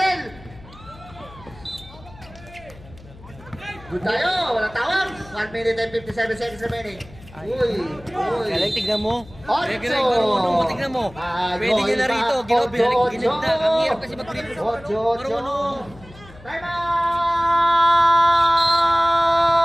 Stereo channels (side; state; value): left; noise; hum, 21 dB below the sound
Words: Good tayo, walang tawag. 1 minute and 57 seconds remaining. Uy. Galing, tignan mo. Ocho. Galing, marunong mo, tignan mo. Pwede nyo na rito. Ginib na. Ang hirap kasi mag-grip. Marunong. Time out!